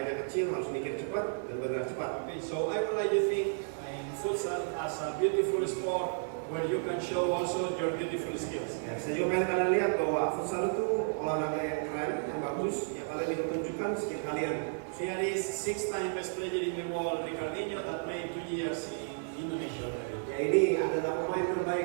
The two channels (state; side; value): silent; left; digital silence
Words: kecil harus mikir cepat dan bergerak cepat. Okay, so I would like to think in futsal as a beautiful sport where you can show also your beautiful skills. Ya, saya juga pengen kalian lihat bahwa futsal itu olahraga yang keren, yang bagus, yang kalian bisa tunjukkan skill kalian. Here is 6-time best player in the world, Ricardinho, that played 2 years in Indonesia already. Ya, ini adalah pemain